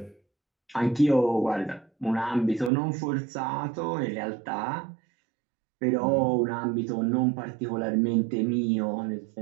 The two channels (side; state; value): left; drops out; at 2.7 s